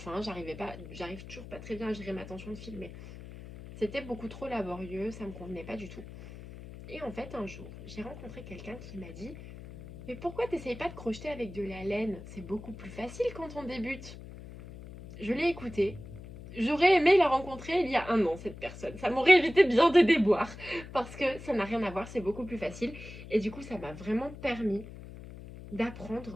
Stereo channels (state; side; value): noise; left; hum, 14 dB below the sound